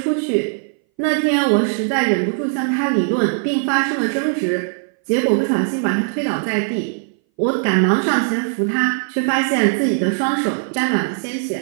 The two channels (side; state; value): left; silent; 61 dB below the other